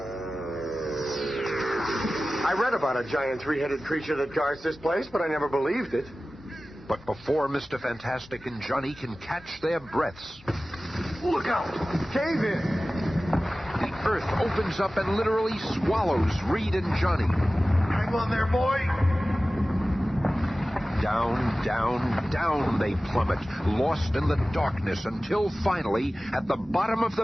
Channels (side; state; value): both; normal; correlation 0.96